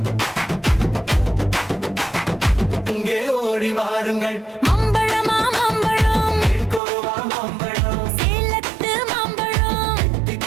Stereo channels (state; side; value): drops out; left; at 6.8 s